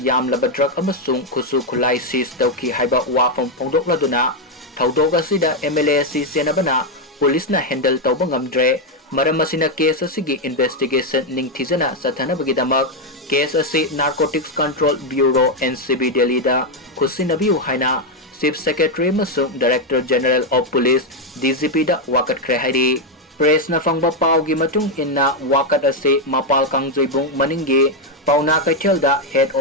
Drug Amasung Kusu Kulai Sis Tauki Haiba Wafam Pongdok Laduna Taudoga Sida Mla Senabana Police na handle Taubangam Dre Maramasina case Asigi investigation Ning Tizana Satana Bagidamak case Asi Narcotics Control Bureau Ncb Delhida Khutsinnabiu Haina Chief Secretary Masung Director General of Police DGP da Fagatkhibagi Press na fangba paugi matung inna wakat ase mapal kangjoibung maningi pauna kaithel da head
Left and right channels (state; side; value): normal; both; correlation 0.03